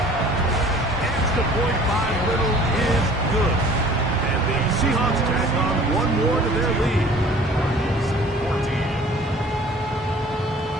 Extra point by Little is good. And the Seahawks tack on 1 more to their lead.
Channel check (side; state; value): both; normal; correlation 0.50